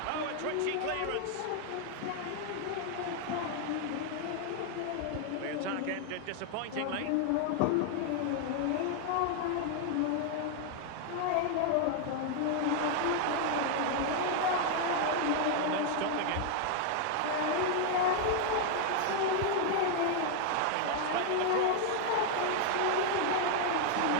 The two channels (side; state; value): both; different; correlation 0.00